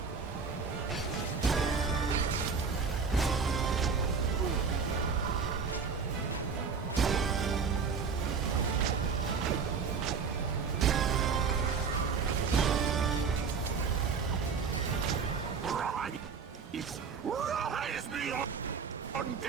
Rise me up,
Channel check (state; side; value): quieter; left; 5.5 dB